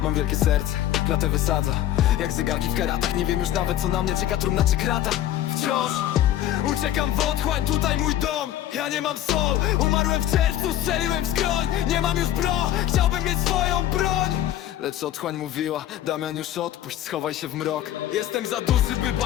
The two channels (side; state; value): right; quieter; 12.4 dB